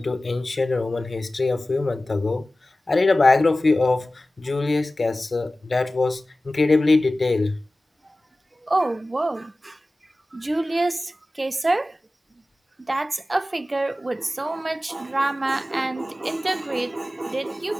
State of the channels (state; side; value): normal; both; correlation 0.96